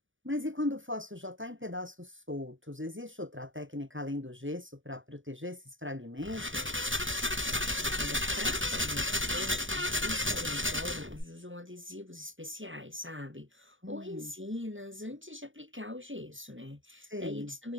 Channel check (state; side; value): late; left; 0.57 ms